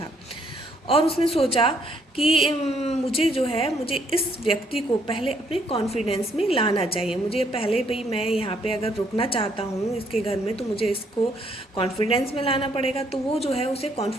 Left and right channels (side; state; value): both; normal; correlation 0.69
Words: था और उसने सोचा कि मुझे इस व्यक्ति को पहले अपने कॉन्फिडेंस में लाना चाहिए। मुझे पहले भाई मैं यहाँ पे अगर रुकना चाहता हूँ इसके घर में तो मुझे इसको कॉन्फिडेंस में लाना पड़ेगा। तो वो जो है उसे